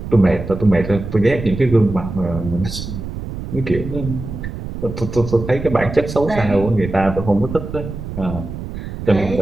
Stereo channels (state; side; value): noise; right; rumble, 8 dB below the sound